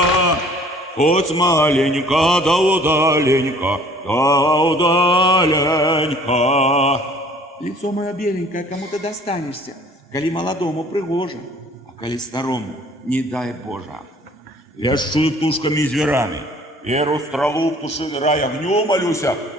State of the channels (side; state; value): both; normal; correlation 0.54